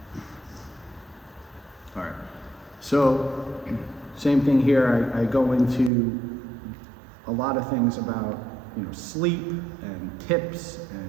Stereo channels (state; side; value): drops out; left; at 5.9 s